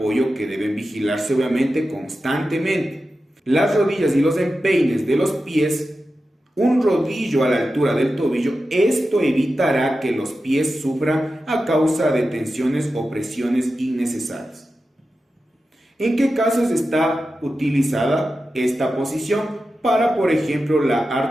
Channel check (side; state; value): both; normal; correlation 0.92